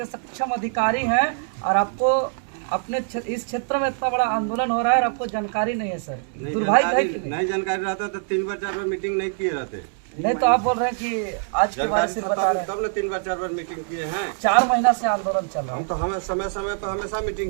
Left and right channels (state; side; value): silent; left; digital silence